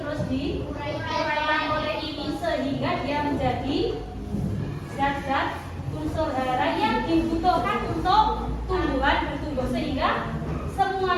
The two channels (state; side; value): identical; both; correlation 1.00